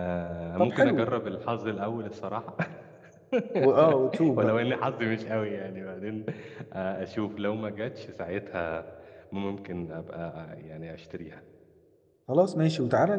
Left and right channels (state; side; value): identical; both; correlation 1.00